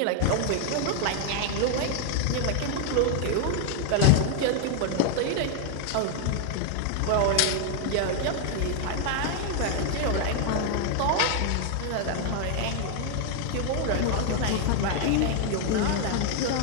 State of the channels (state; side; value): different; both; correlation 0.00